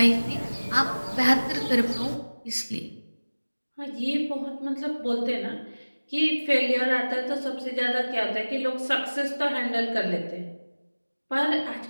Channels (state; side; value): inverted; both; correlation -1.00